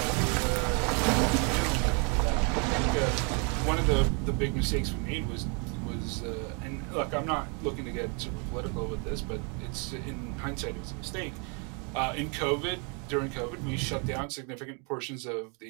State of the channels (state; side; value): quieter; left; 35.9 dB